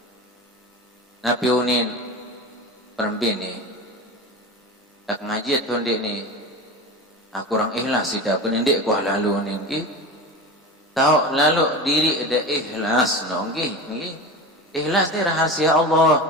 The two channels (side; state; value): both; normal; correlation 0.28